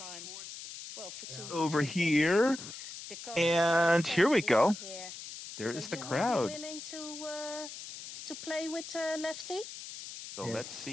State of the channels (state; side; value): noise; left; hiss, 11 dB below the sound